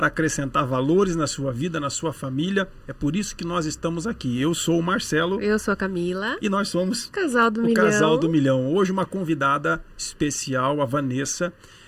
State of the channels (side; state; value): both; identical; correlation 1.00